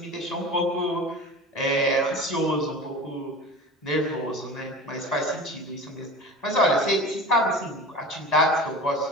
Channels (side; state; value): both; normal; correlation 0.34